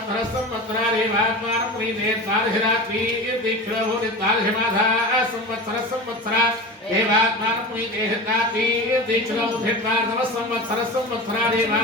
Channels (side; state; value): both; normal; correlation 0.30